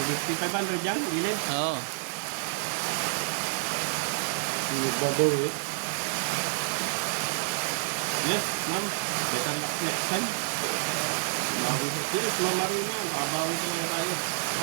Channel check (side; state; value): left; silent; 59 dB below the other